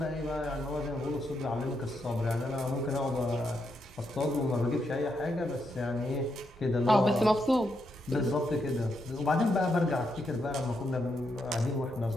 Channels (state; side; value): normal; both; correlation 0.81